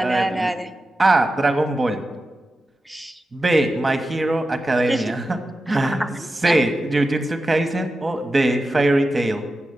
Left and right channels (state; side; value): normal; both; correlation 0.92